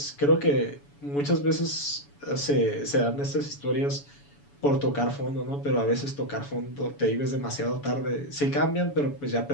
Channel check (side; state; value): right; late; 7.0 ms